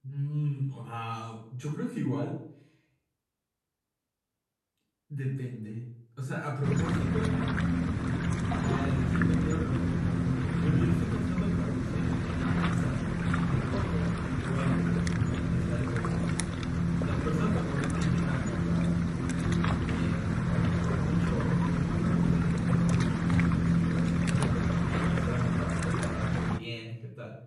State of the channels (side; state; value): both; identical; correlation 1.00